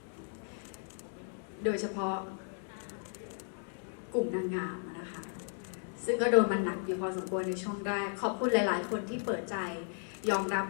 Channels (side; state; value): right; silent; 54 dB below the other